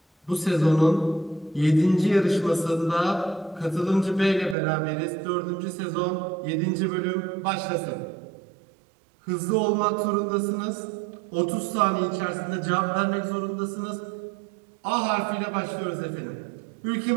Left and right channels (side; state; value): left; drops out; at 4.5 s